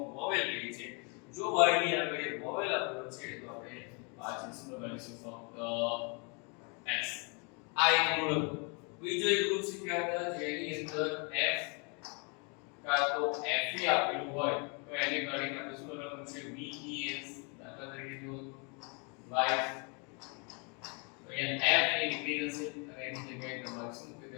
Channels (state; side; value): quieter; right; 34.1 dB